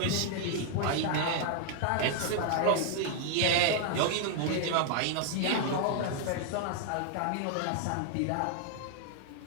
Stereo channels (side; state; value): both; different; correlation 0.00